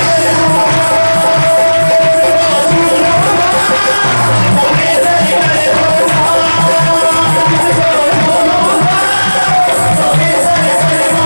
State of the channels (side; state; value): both; inverted; correlation -1.00